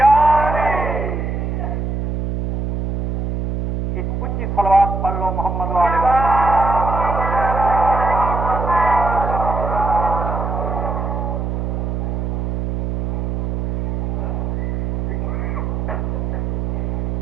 ایک اونچی صلوات پڑھ لو محمد والے وسلم.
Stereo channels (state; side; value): noise; right; hum, 1 dB below the sound